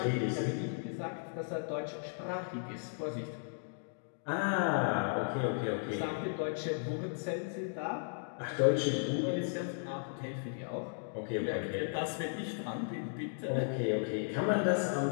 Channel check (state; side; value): silent; right; digital silence